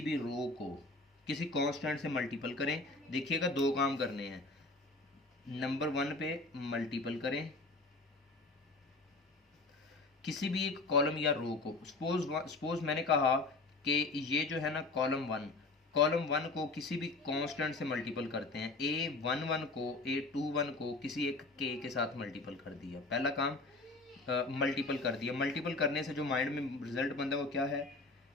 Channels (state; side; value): quieter; right; 3.3 dB